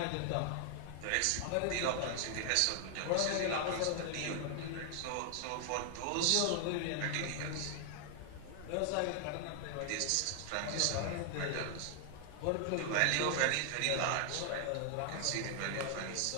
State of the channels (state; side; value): different; both; correlation 0.00